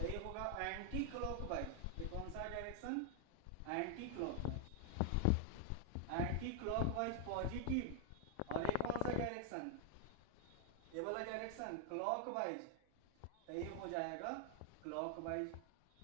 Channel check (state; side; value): different; both; correlation 0.00